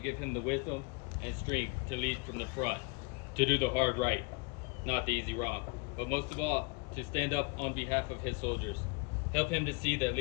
him the wisdom and strength to lead from the front, to do the hard right, not the easy wrong, but most of all, to stand up on behalf of his soldiers. Help him to see that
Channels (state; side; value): quieter; right; 29.9 dB